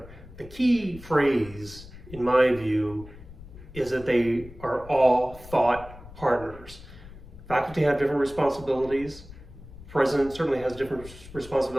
The key phrase, in my view, is that they are all thought partners. Faculty have different responsibilities. President certainly has different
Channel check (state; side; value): noise; left; rumble, 17 dB below the sound